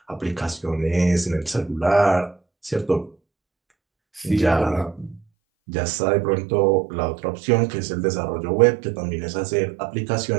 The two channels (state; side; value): drops out; left; at 5.2 s